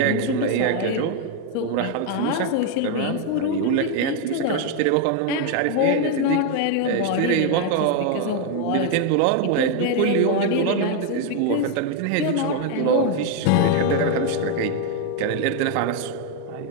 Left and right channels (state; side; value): different; both; correlation 0.01